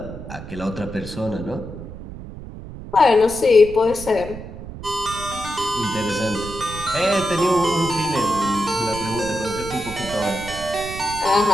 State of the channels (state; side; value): noise; right; rumble, 12 dB below the sound